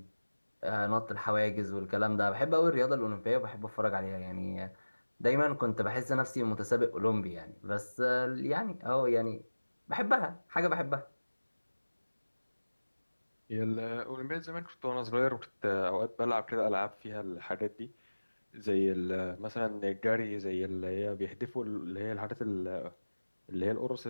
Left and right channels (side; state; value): both; inverted; correlation -1.00